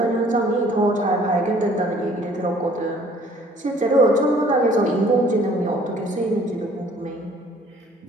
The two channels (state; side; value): normal; both; correlation 0.56